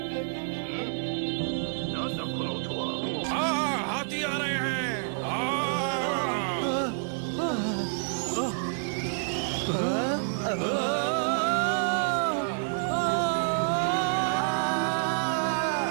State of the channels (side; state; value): left; silent; digital silence